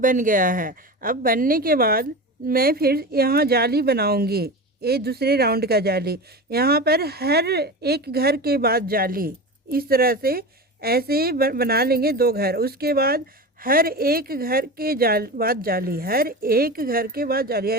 गया है। अब बनने के बाद मैं फिर यहाँ जाली बनाऊंगी, ये दूसरे राउंड का जाली। यहाँ पर हर एक घर के बाद जाली, इस तरह से ऐसे बना लेंगे 2 घर। उसके बाद हर एक घर के बाद जाली, हर एक घर के बाद जाली,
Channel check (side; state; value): both; normal; correlation 0.27